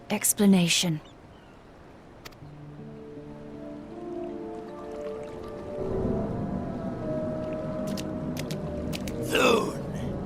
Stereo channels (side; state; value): both; identical; correlation 1.00